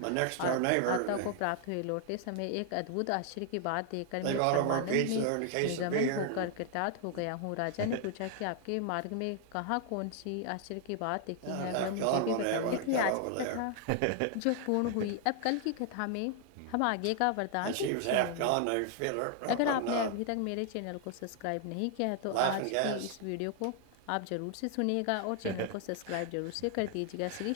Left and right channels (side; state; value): both; different; correlation 0.00